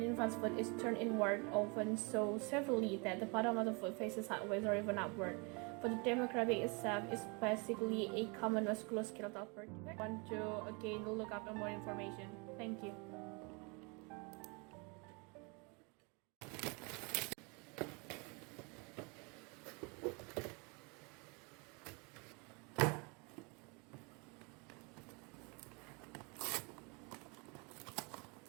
infant's foot is turned inward, often so severely that the bottom of the foot faces sideways or even upward. For the demographic itself is basically a common musculoskeletal birth defect. Want to again look up more information. Thank you.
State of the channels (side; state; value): left; quieter; 31.1 dB